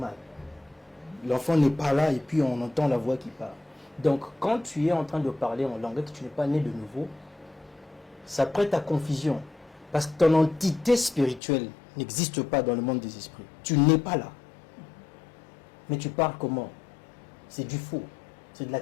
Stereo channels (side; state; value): right; drops out; at 11.4 s